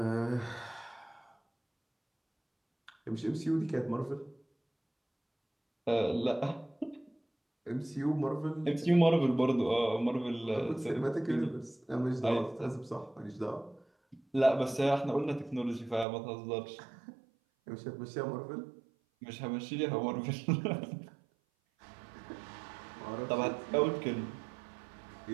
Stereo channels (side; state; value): left; drops out; at 16.1 s